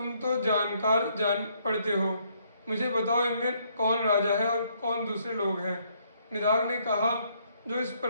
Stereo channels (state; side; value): inverted; both; correlation -0.69